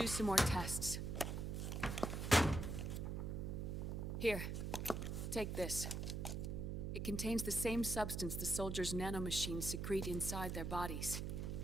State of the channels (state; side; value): noise; right; hum, 2 dB below the sound